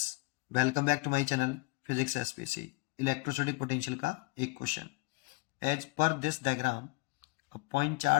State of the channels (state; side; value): quieter; right; 24.9 dB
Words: welcome back to my channel physics SPC. Electrostatic potential का एक question. As per this diagram a point